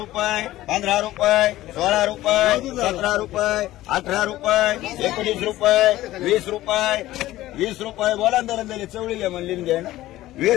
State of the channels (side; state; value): right; quieter; 15.7 dB